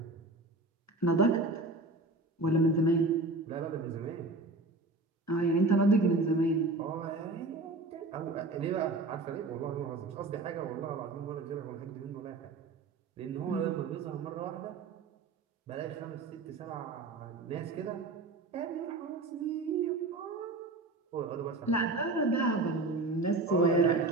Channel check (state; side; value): quieter; left; 3.2 dB